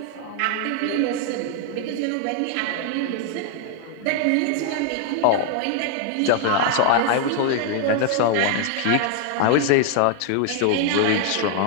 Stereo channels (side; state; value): both; different; correlation 0.00